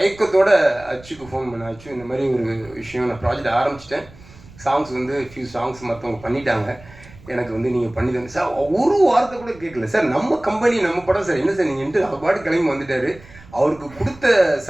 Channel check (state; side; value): noise; right; rumble, 22 dB below the sound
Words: அச்சுக்கு ஃபோன் பண்ணேன். அச்சு இந்த மாதிரி ஒரு விஷயம், நான் ப்ராஜெக்ட் ஆரம்பிச்சிட்டேன். சாங்ஸ் வந்து ஃபியூ சாங்ஸ் மற்றவங்க பண்ணிட்டாங்க, எனக்கு வந்து நீங்கள் பண்ணி தந்து சார். ஒரு வார்த்தை கூட கேட்கல சார். நம்ம கம்பெனி நம்ம படம் சார், என்ன சார் நீங்கள்ட்டு அவர் பாட்டு கிளம்பி வந்துட்டார். அவருக்கு கொடுத்த